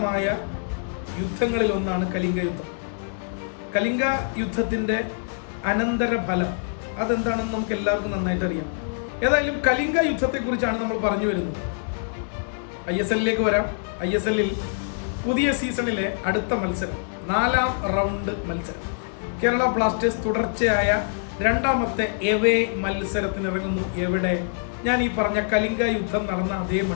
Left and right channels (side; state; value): right; silent; digital silence